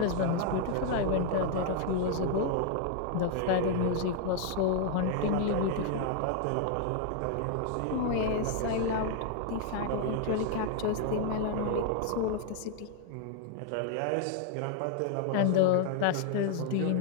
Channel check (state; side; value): different; both; correlation 0.00